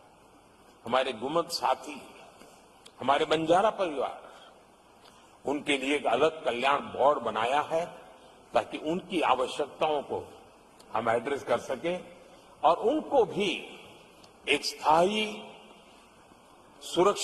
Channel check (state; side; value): identical; both; correlation 1.00